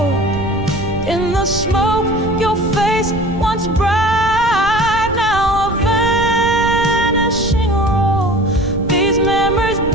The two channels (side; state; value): right; noise; rumble, 9 dB below the sound